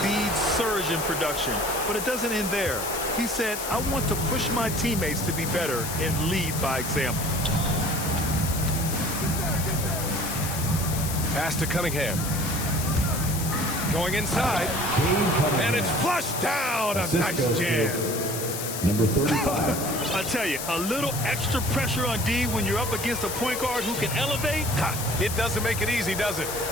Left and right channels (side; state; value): left; noise; hiss, 6 dB below the sound